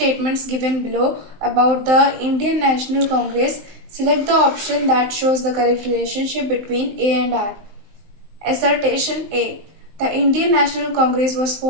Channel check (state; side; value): late; left; 19 ms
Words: given below about the Indian National Congress. Select the option that shows the correct relationship between A and R. Assertion A. The Indian National Congress was